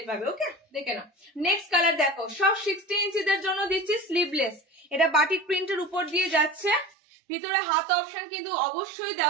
পাবে। ওকে, দেখে না। নেক্সট কালার দেখো, সব 60 ইঞ্চিদের জন্য দিচ্ছি স্লিভলেস, এটা বাটিক প্রিন্টের উপর দিয়ে যাচ্ছে, ভিতরে হাত অপশন কিন্তু অবশ্যই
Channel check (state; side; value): drops out; left; at 6.9 s